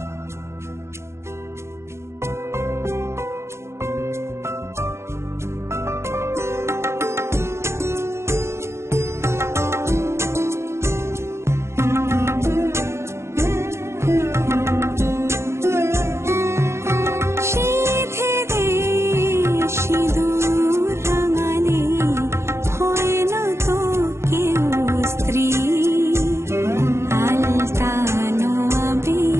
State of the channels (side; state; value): left; late; 0.13 ms